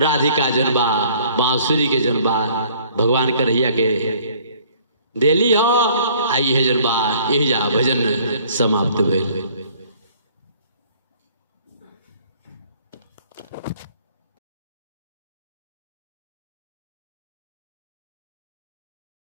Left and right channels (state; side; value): inverted; both; correlation -0.57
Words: जनबा बांसुरी के जनबा भगवान कन्हैया के देली हो। आई है जनबा यही जा भजन समाप्त भेल।